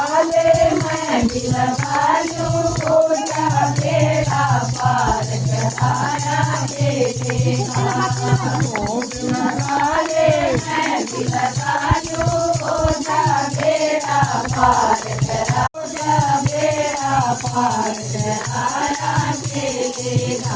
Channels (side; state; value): both; identical; correlation 1.00